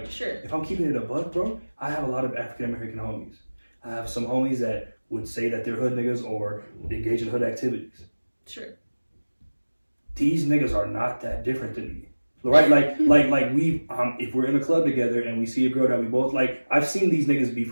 if I'm keeping it a buck, bro, I have a lot of African-American homies. I have some homies that would say that they're hood niggas or engage in hood activities. Sure. These niggas are not that different than me. Right, like we if we're in a club together and we see a girl that we both like, I've seen these niggas be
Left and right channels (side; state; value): both; inverted; correlation -1.00